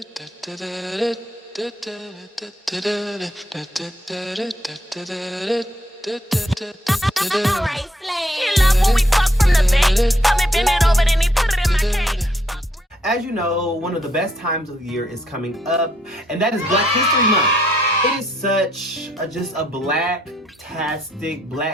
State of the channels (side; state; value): both; normal; correlation 0.71